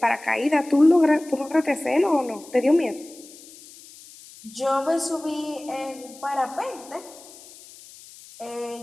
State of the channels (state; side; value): noise; left; hiss, 20 dB below the sound